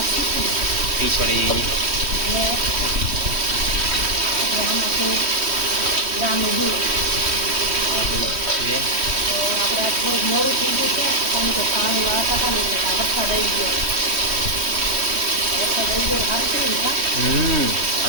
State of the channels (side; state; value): left; late; 3.1 ms